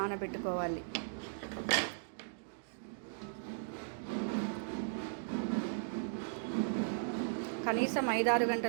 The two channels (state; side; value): silent; left; digital silence